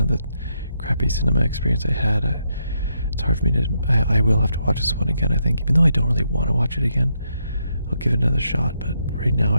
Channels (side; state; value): both; inverted; correlation -0.79